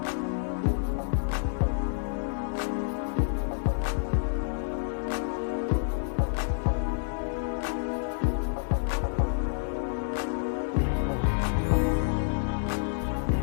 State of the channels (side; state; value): right; silent; 58 dB below the other